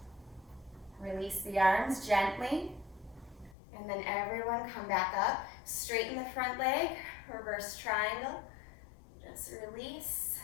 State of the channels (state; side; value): drops out; right; at 3.6 s